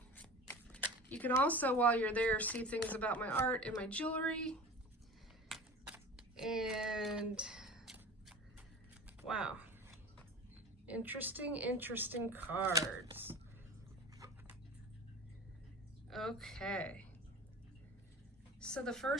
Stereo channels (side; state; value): both; normal; correlation 0.36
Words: You can also, while you're there, see things about my art and my jewelry. And wow, interesting cards. Okay. So the